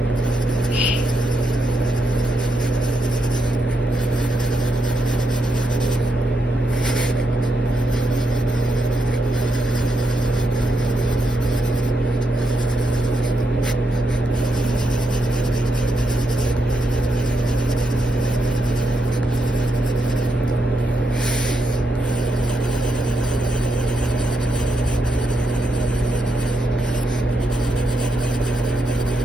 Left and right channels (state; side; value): normal; both; correlation 0.81